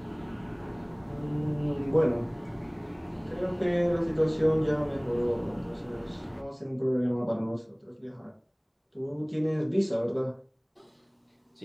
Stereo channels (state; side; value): identical; both; correlation 1.00